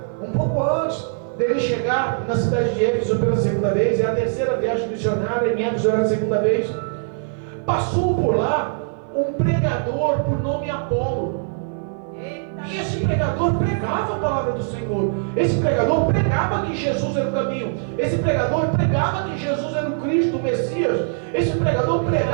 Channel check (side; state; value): left; silent; 55 dB below the other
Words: um pouco antes dele chegar na cidade de Éfeso pela segunda vez, é a terceira viagem missionária, em Éfeso era a segunda vez, passou por lá um pregador por nome Apolo. Eita. E esse pregador pregava a palavra do Senhor. Esse pregador pregava que Jesus era o caminho. Esse pregador pregava que Jesus era o Cristo, o Messias. Esse pregador